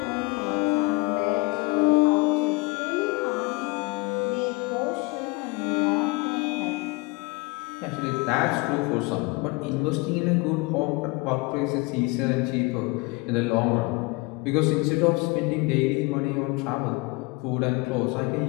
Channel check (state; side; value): quieter; right; 26.3 dB